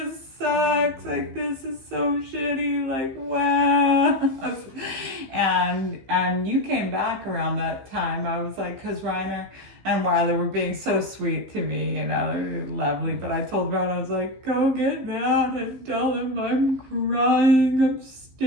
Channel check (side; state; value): left; late; 15 ms